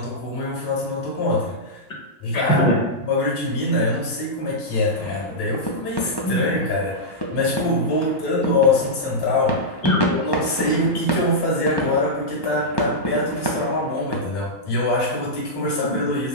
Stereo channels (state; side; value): late; right; 1.1 ms